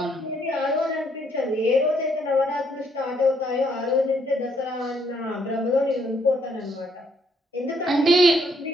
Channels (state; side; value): normal; both; correlation 0.70